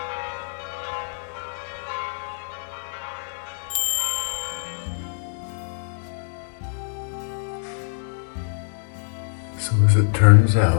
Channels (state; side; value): silent; right; digital silence